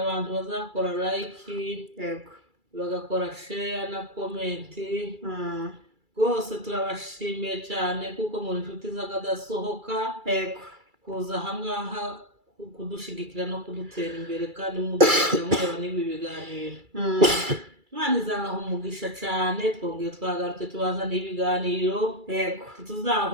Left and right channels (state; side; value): late; left; 2.3 ms